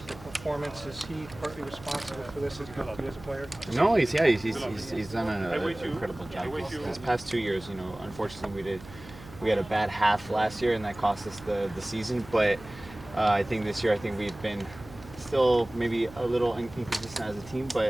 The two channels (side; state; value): right; noise; hum, 18 dB below the sound